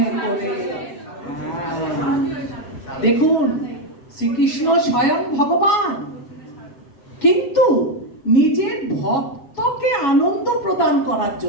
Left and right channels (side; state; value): right; late; 7.2 ms